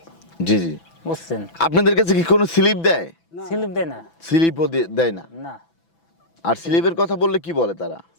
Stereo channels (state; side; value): late; right; 6.0 ms